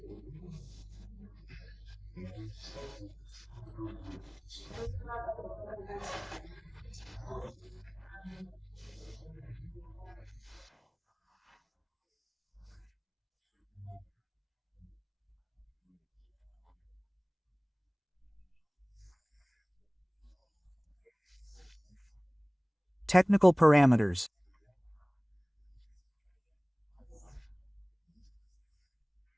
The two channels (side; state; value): both; identical; correlation 1.00